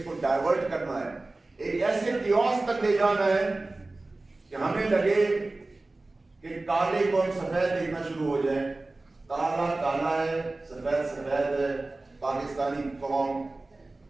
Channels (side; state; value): left; quieter; 3.1 dB